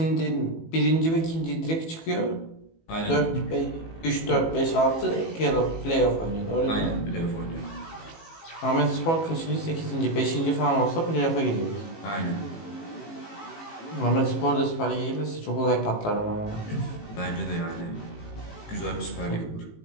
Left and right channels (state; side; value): late; right; 18 ms